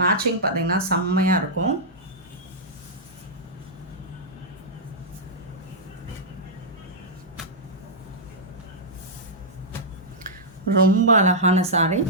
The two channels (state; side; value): normal; both; correlation -0.09